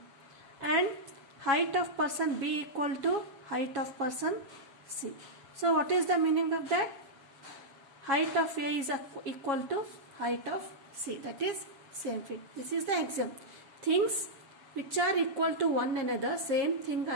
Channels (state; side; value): late; left; 7.2 ms